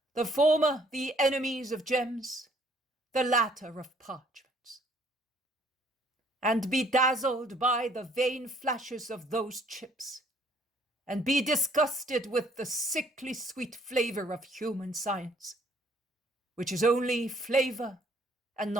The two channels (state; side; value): normal; both; correlation 0.62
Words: the former the enemies of gems, the latter of parchments, and be dazzled by the vain flashes of those chips, and be disgusted with the sickly sweet flavor of human science, which is only flavor and